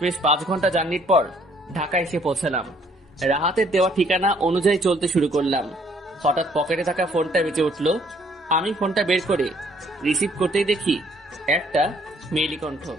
5 ঘন্টা জার্নির পর ঢাকায় এসে পৌঁছালাম। রাহাতের দেওয়া ঠিকানা অনুযায়ী চলতে শুরু করলাম। হঠাৎ পকেটে থাকা ফোনটা বেজে উঠল। আমি ফোনটা বের করে রিসিভ করতেই দেখি একটা মেইলি কণ্ঠ।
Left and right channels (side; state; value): both; normal; correlation 0.63